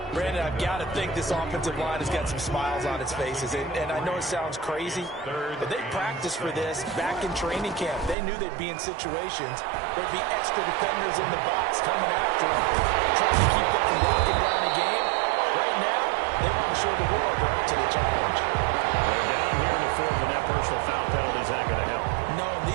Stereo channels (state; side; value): drops out; left; at 8.2 s